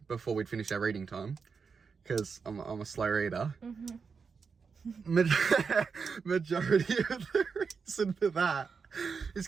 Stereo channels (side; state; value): left; quieter; 5.5 dB